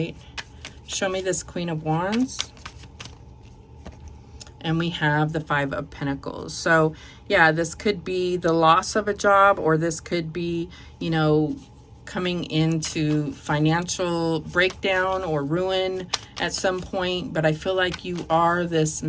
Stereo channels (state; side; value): identical; both; correlation 1.00